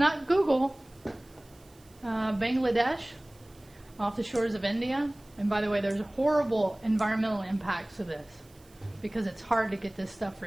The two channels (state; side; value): noise; right; hiss, 28 dB below the sound